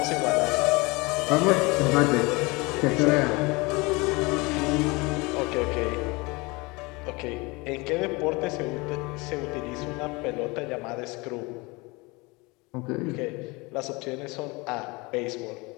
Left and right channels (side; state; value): right; quieter; 25.5 dB